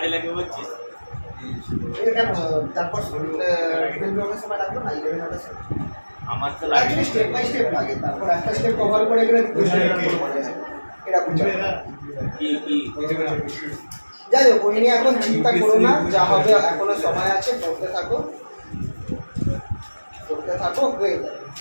লাগে বলছিস। এটা কেন তারপর 12 ব্লকের সময় লাগলো না 11 হওয়ার সময়? আমার তো লাগে অ্যাকচুয়ালি স্টেপ বাই স্টেপ লাগে, তারপর একটা স্টেপ কভার করে গেলে এটা বুঝতে হবে। কি কি যাই হোক ওই নিয়ে এখন চিন্তা করো না, যা হবে এখনো সময় আছে, পড়তে থাকো হয়ে যাবে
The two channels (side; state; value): both; inverted; correlation -1.00